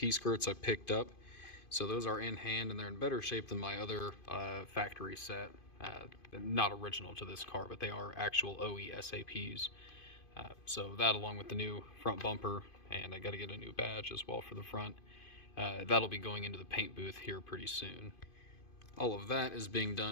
skirts I picked up. So those are in hand and they're in better shape than my other factory set. Not original to this car, but they are actual OE SAPs. So that along with the new front bumper, and I got to get a new badge as well for the front. That'll be going into the paint booth here pretty soon. All of that is being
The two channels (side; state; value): right; late; 2.5 ms